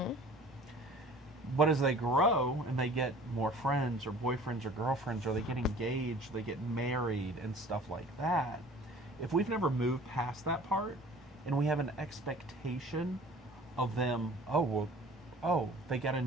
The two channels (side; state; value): both; normal; correlation 0.47